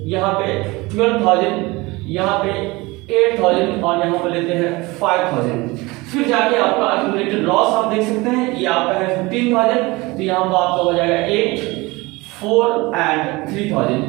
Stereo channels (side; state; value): left; quieter; 22.9 dB